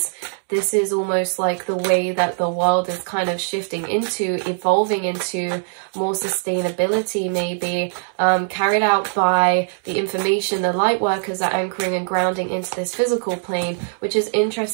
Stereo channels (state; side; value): silent; left; digital silence